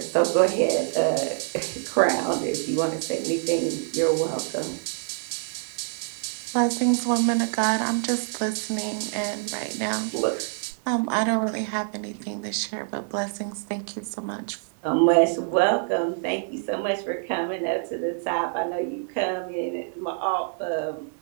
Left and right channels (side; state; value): left; silent; 61 dB below the other